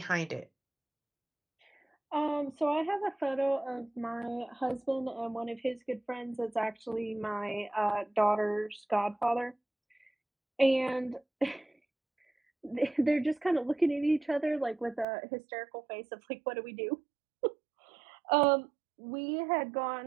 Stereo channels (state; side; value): drops out; left; at 15.1 s